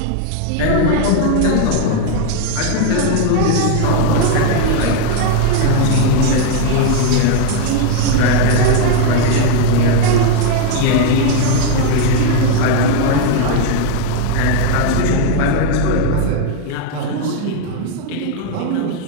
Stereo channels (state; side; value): different; both; correlation 0.01